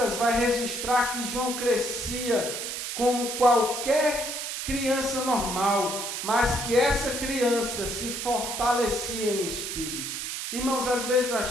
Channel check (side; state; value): right; noise; hiss, 4 dB below the sound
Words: vai registrar que João crescia como qualquer criança normal, mas que essa criança se fortalecia em espírito. Irmãos, às vezes